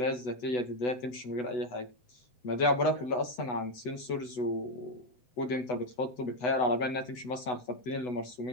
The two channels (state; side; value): late; right; 8.1 ms